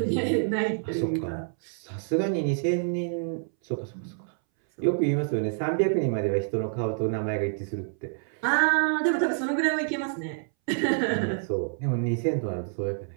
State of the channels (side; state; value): left; silent; 60 dB below the other